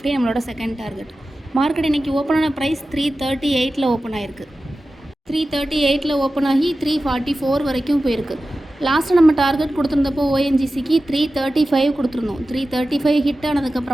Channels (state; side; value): normal; both; correlation 0.94